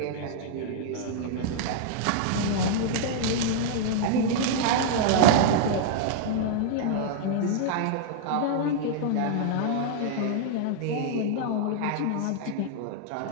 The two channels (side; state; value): both; different; correlation -0.01